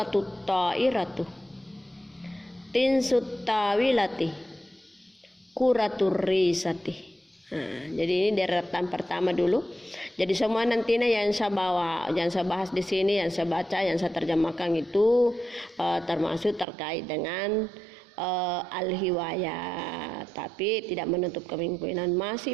ta'iratu, tinsut tawilati, kuratur risati. Nah, jadi ini deretan pertama dulu. Jadi semua nantinya yang saya bawa, yang saya bahas di sini, yang saya baca, yang saya terjemahkan itu termasuk terkait dengan al-hiwayah. Tapi tidak menutup kemungkinan masih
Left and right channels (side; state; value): left; drops out; at 16.7 s